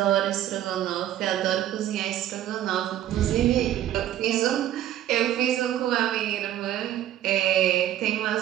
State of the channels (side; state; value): left; quieter; 12.3 dB